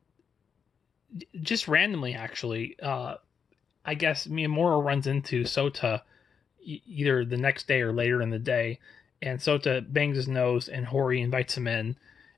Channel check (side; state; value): right; quieter; 6.6 dB